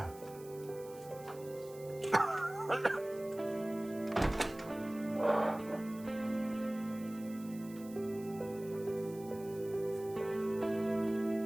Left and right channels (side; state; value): right; noise; hiss, 20 dB below the sound